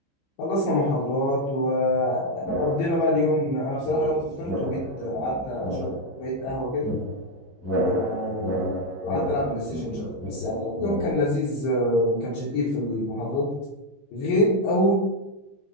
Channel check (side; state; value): right; late; 15 ms